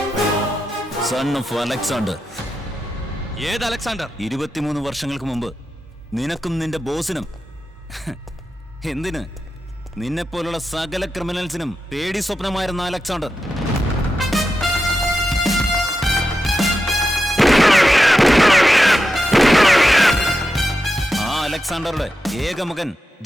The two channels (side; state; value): both; normal; correlation 0.89